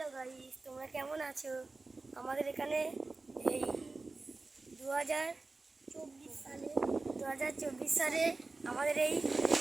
guys, তোমরা কেমন আছো? আমাদের এখানে এই 2024 সালে আমাদের এই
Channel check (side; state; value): left; quieter; 3.5 dB